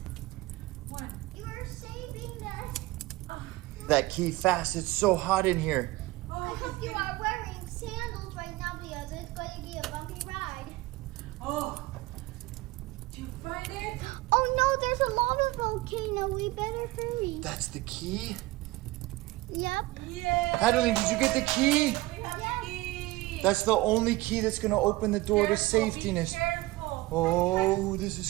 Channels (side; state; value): left; quieter; 19.9 dB